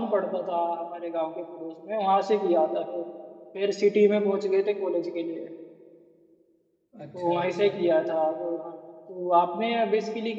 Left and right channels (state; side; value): identical; both; correlation 1.00